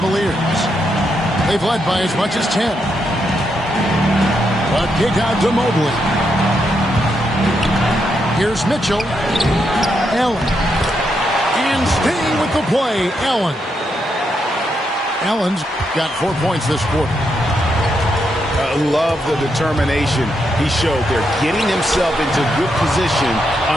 They've led by as much as 10. But kick out to Mobley. Here's Mitchell. Allen. And staying with the play, Allen. Allen's got 4 points this quarter. I love the determination he showed there, getting himself into good position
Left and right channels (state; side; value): normal; both; correlation 0.81